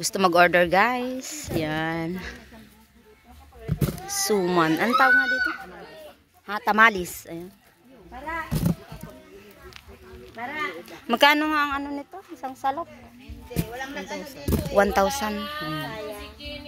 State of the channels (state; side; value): identical; both; correlation 1.00